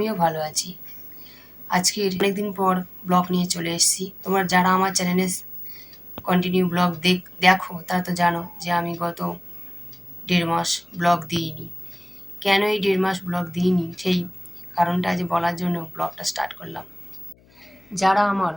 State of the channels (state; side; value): noise; left; hum, 29 dB below the sound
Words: ভালো আছি। আজকের অনেকদিন পর ব্লগ নিয়ে চলে এসেছি। তোমরা যারা আমার চ্যানেলে কন্টিনিউ ব্লগ দেখো তারা তো জানো যে আমি গত 1.5 মাস ব্লগ দিইনি। কেন এই 1.5 মাস ব্লগ দিইনি সেই কারণটা আজ বলার জন্য ব্লগটা স্টার্ট করলাম। যারা আমার